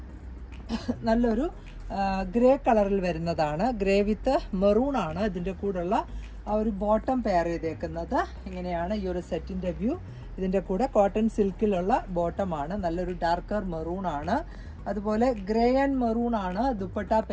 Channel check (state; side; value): identical; both; correlation 1.00